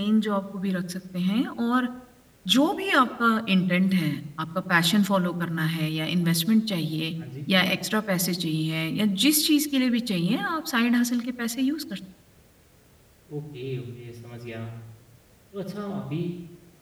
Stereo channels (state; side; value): identical; both; correlation 1.00